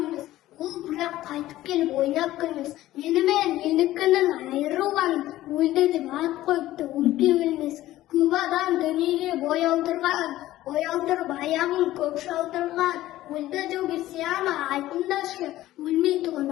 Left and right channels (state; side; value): quieter; right; 15.2 dB